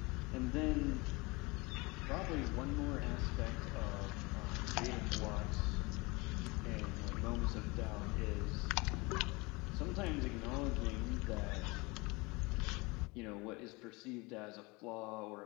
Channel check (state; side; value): quieter; right; 25.2 dB